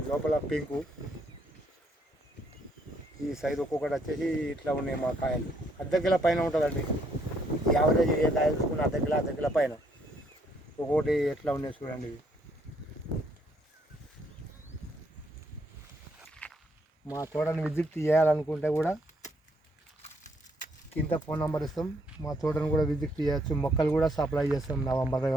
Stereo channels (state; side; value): normal; both; correlation 0.70